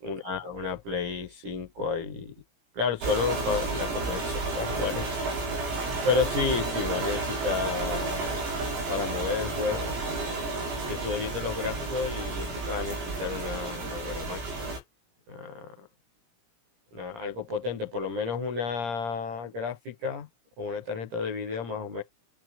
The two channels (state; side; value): late; left; 17 ms